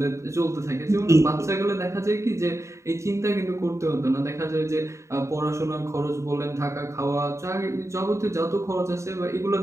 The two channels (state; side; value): late; left; 0.14 ms